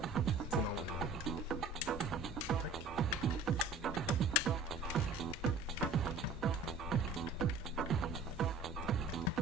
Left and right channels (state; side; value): quieter; left; 3.7 dB